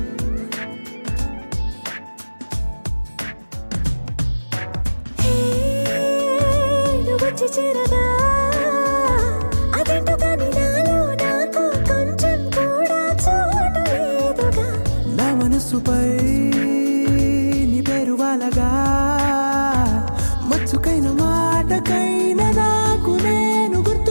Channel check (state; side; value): inverted; both; correlation -1.00